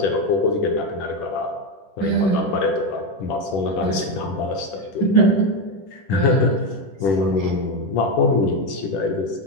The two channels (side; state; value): right; late; 10 ms